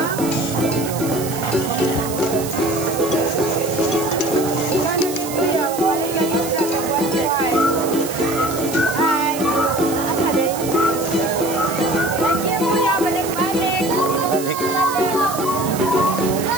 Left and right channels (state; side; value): noise; right; hiss, 10 dB below the sound